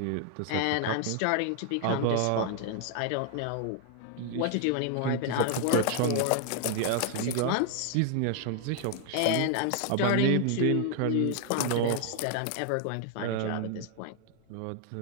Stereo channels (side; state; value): both; different; correlation 0.00